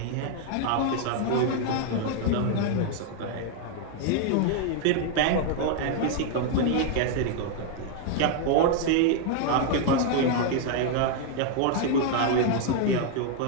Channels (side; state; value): both; different; correlation 0.00